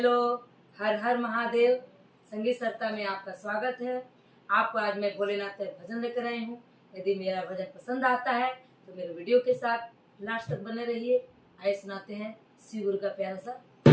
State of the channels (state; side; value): identical; both; correlation 1.00